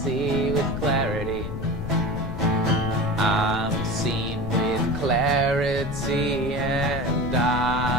see with clarity. I'm seen with clarity and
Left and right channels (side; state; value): left; noise; rumble, 6 dB below the sound